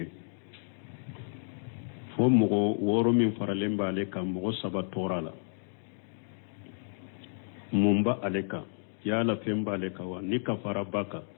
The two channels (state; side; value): silent; right; digital silence